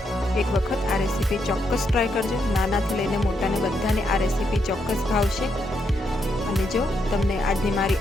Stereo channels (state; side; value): normal; both; correlation 0.79